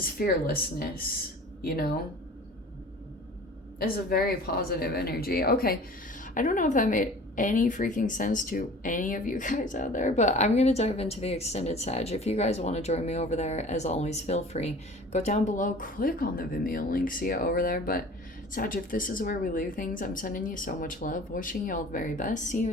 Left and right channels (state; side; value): normal; both; correlation 0.44